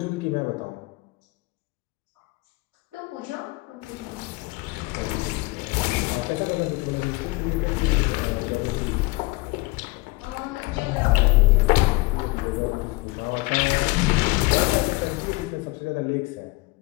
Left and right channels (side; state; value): right; quieter; 23.7 dB